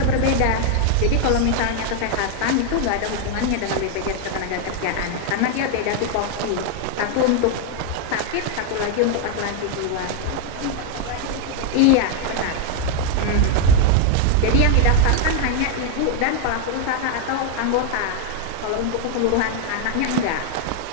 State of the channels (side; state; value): both; different; correlation 0.00